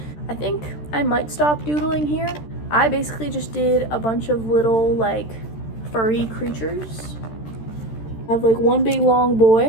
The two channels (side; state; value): right; late; 13 ms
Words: I think I might stop doodling here. I basically just did a bunch of little like furry creatures. I have like one big long